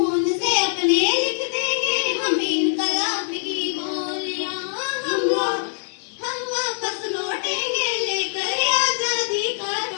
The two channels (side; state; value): right; silent; 63 dB below the other